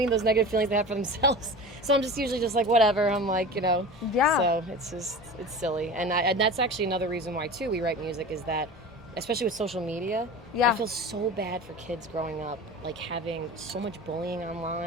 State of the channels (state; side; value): normal; both; correlation 0.34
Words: Those negative feelings they have for themselves. So I'm just usually just like, whatever. I'm like, Yeah. So it's silly. And that's actually another reason why too we write music is that, especially with social media, Yeah. I feel so bad for kids growing up, like having so much bullying